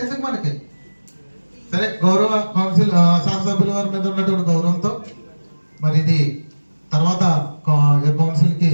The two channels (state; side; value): inverted; both; correlation -1.00